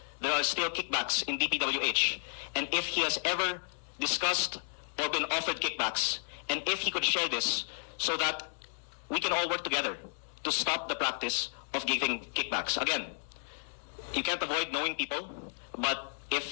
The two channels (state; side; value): silent; right; digital silence